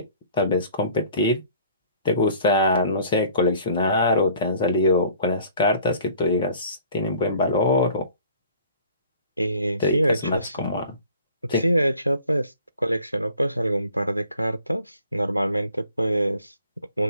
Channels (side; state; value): both; inverted; correlation -0.52